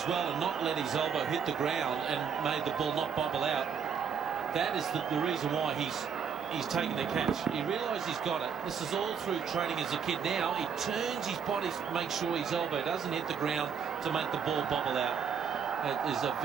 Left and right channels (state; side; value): quieter; left; 6.8 dB